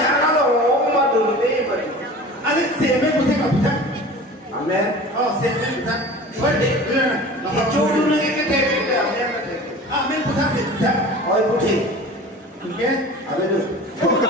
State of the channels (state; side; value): normal; both; correlation 0.39